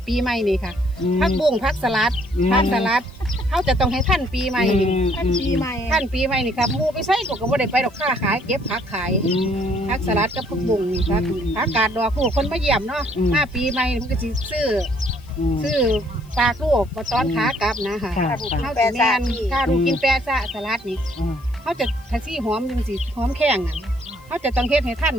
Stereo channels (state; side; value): noise; left; hiss, 29 dB below the sound